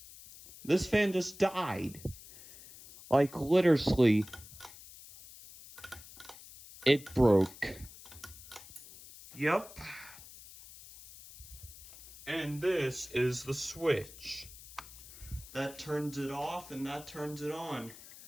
This fan just died. Like literally, it broke. Yep. And this is the switch. That turns it off and that turns it on.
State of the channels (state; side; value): noise; left; hiss, 17 dB below the sound